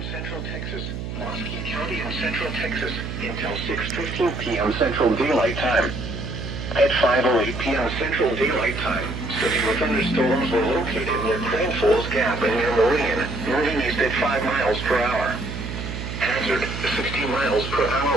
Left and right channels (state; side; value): noise; right; hum, 6 dB below the sound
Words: central Texas, Wasky County and central Texas until 6:15 p.m. Central Daylight Time. At 5:08 p.m. Central Daylight Time, severe thunderstorms were located near Crane Falls Gap and near Meridian, moving east at 5 miles per hour. Hazard, 60 miles per